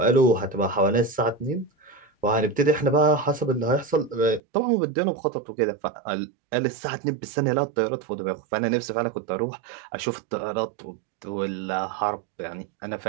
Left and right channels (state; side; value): drops out; left; at 4.4 s